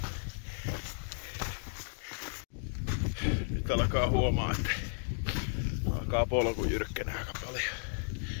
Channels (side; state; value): right; silent; digital silence